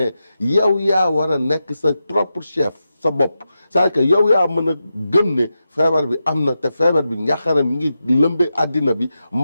yow yaa war a nekk sa propre chef sa bopp c'est-à-dire que yow yaa mën a gëm ne feebar bi am na te feebar bi njàqare mi ngi lëmbe àddina bi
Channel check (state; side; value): inverted; both; correlation -0.89